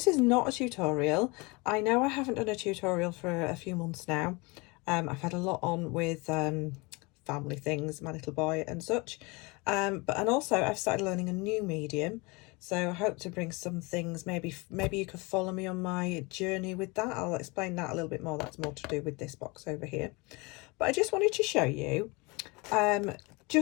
is not a tutorial. I know I haven't done a tutorial for a few months now. I've had a lot on with family things, my little boy and such, and also I've started learning a new medium, so I hope to bring some things. Maybe you could follow me on my journey with that. I'll explain that a little bit more. That's more to do with this box over here, but I just wanted to show you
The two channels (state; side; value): quieter; right; 26.6 dB